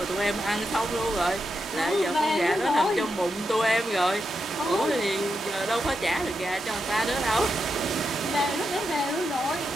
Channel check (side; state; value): both; normal; correlation 0.86